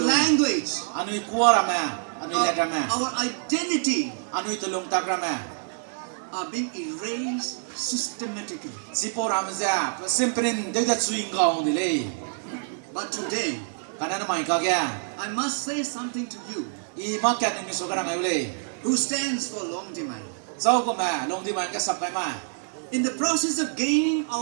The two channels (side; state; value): left; silent; 61 dB below the other